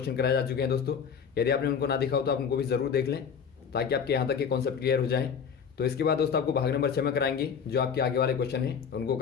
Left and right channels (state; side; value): quieter; right; 6.9 dB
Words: कराए जा चुके हैं दोस्तों। यदि आपने उनको ना देखा हो तो आप उनको भी जरूर देख लें, ताकि आपके यहाँ तक के कॉन्सेप्ट क्लियर हो जाए। तो इसके बाद दोस्तों आपको भाग नंबर 6 में कराएंगे, जो आपके आगे वाले क्वेश्चन हैं उनको